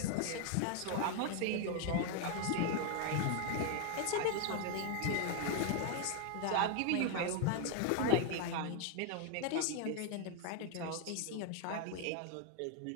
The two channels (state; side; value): different; both; correlation 0.01